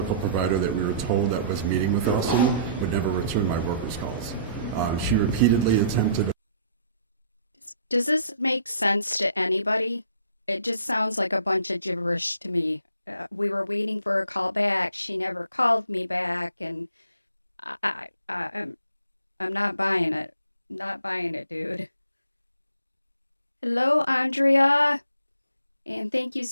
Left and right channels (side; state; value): both; inverted; correlation -0.59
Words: provider that we were told that was meeting with Austin would never return my workers' calls. She repeatedly attempted. Does this make sense to anybody? It just sounds like a bunch of gibberish to me. We were waiting for a call back. She never called me back, and I'm not buying it. Not buying it, dude. Hello, Andrea, and thank you,